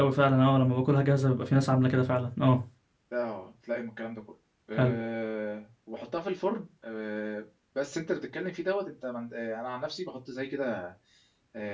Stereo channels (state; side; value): identical; both; correlation 1.00